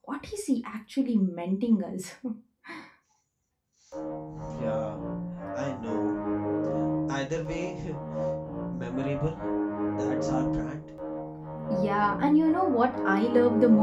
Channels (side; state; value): both; identical; correlation 1.00